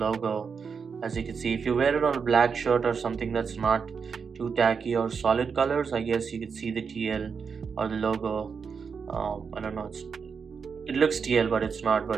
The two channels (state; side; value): quieter; left; 5.9 dB